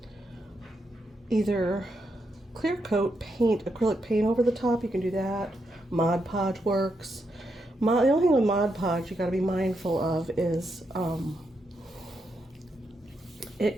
either clear coat paint, acrylic paint over the top. You can do that. Mod Podge works. The only thing with Mod Podge you got to be mindful of is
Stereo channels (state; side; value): normal; both; correlation 0.82